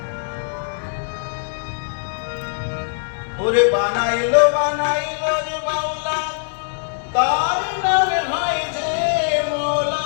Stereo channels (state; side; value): silent; right; digital silence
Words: ওরে বানাইলো বানাইলো রে বাউলা, তার নামে হয় যে মৌলা।